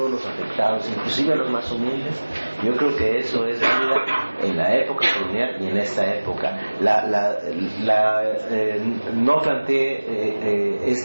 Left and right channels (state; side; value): inverted; both; correlation -1.00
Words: los afectados, inclusive a los más humildes, yo creo que eso es válida en la época colonial y en esta época. No planteé